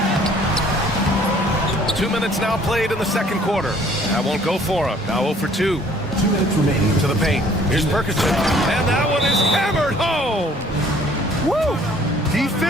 2 minutes now played in the second quarter. That won't go for him. Now 0 for 2. 2 minutes remaining. To the paint. Here's Perkison. And that one is hammered home. Woo!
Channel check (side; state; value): both; normal; correlation 0.57